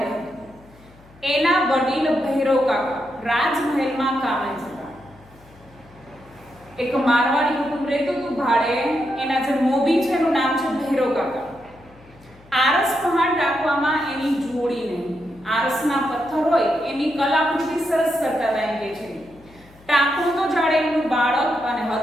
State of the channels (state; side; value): noise; left; hum, 26 dB below the sound